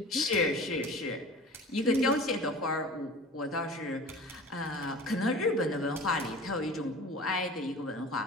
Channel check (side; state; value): both; normal; correlation 0.40